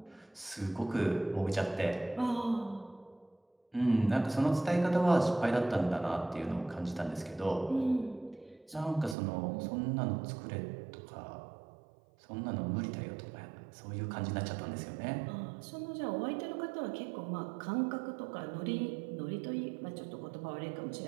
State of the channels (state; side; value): drops out; left; at 9.2 s